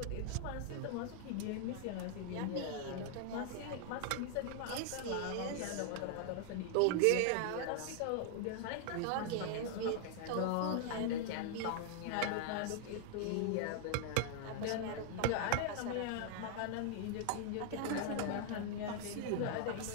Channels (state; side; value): different; both; correlation 0.00